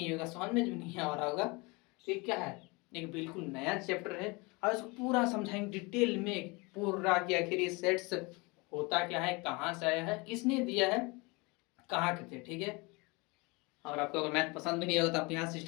होगा, समझ में भी नहीं आ रहा होगा, तो ये क्या है, एक बिल्कुल नया चैप्टर है और इसको पूरा समझाएंगे डिटेल में पूरा कि आखिर ये सेट्स होता क्या है, कहाँ से आया है, किसने दिया है, कहाँ के थे, ठीक है। और आपको अगर मैथ पसंद भी नहीं होगा तो आप यहाँ से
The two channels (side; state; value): right; quieter; 26.7 dB